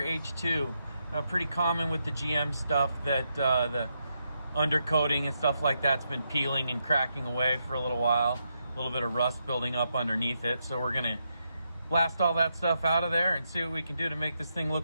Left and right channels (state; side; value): inverted; both; correlation -0.82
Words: H2. Pretty common with the GM stuff that the undercoating and stuff like that's been peeling and cracking away for a little while. A little bit of rust building up underneath it. So we're gonna blast all that stuff out of there and see what we can do to make this thing